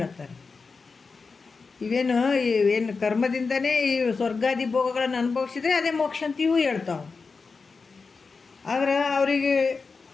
ಏನು ಕರ್ಮದಿಂದನೇ ಈ ಸ್ವರ್ಗಾದಿ ಭೋಗಗಳನ್ನು ಅನುಭವಿಸಿದ್ರೆ ಅದೇ ಮೋಕ್ಷ ಅಂತ ಇವು ಹೇಳ್ತಾವೆ. ಆದ್ರೆ ಅವರಿಗೆ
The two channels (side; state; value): right; quieter; 4.6 dB